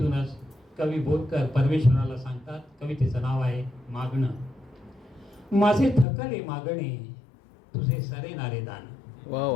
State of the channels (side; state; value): right; drops out; at 6.1 s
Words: कवी बोरकर परमेश्वराला सांगतात. कवितेचं नाव आहे मागणं. माझे थकले मागणे तुझे सरेनारे दान, वा